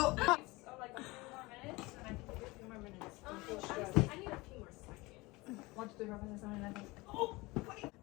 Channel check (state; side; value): quieter; right; 22.7 dB